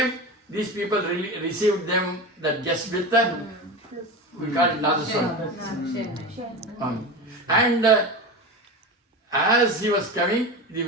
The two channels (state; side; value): normal; both; correlation 0.25